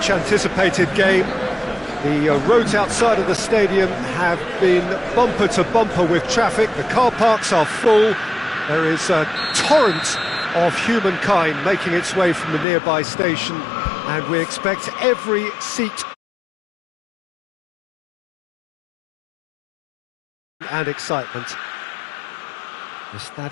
game. The roads outside of the stadium have been bumper to bumper with traffic. The car parks are full. There is a torrent of humankind making its way from the nearby station, and we expect every seat and excitement. The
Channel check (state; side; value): drops out; right; at 12.7 s